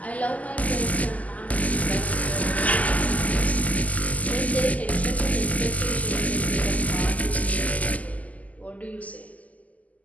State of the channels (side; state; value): right; late; 0.075 ms